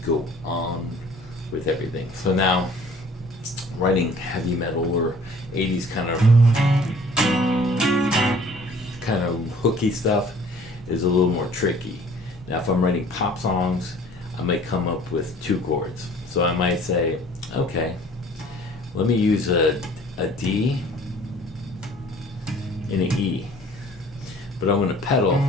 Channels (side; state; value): both; normal; correlation 0.52